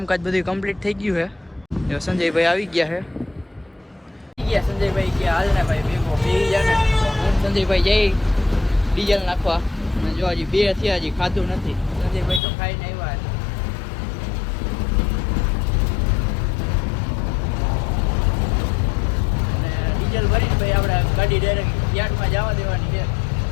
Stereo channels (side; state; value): right; drops out; at 12.4 s